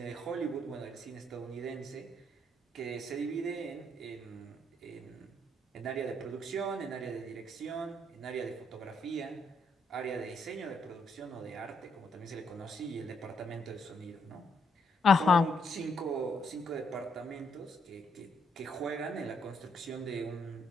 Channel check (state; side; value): normal; both; correlation 0.74